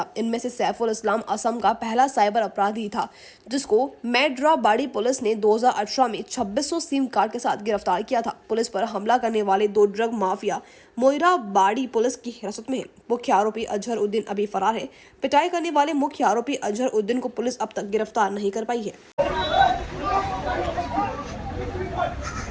इनमें से सैफुल इस्लाम असम का पहला साइबर अपराधी था, जिसको मेराबड़ी पुलिस ने 2018 में 2600 सिम कार्ड के साथ गिरफ्तार किया था। पुलिस पर हमला करने वाले 2 ड्रग माफिया मेराबड़ी पुलिस की हिरासत में है। मुख्य आरोपी अजहर उद्दीन अभी फरार है। पिटाई करने वाले मुख्य आरोपी अजहर उद्दीन को पुलिस अब तक गिरफ्तार नहीं कर पाई है।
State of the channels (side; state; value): both; identical; correlation 1.00